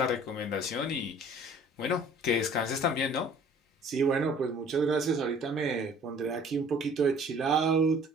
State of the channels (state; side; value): normal; both; correlation 0.52